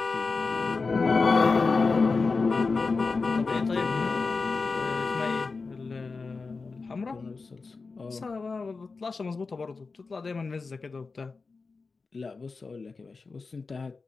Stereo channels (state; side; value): quieter; right; 4.2 dB